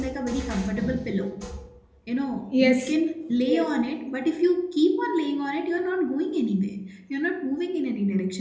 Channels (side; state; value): both; identical; correlation 1.00